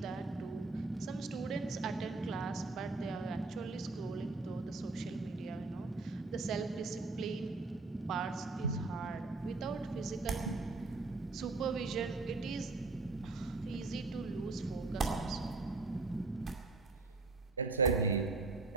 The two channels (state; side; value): quieter; left; 3.6 dB